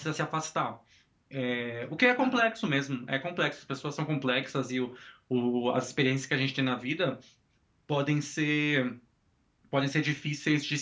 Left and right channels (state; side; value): identical; both; correlation 1.00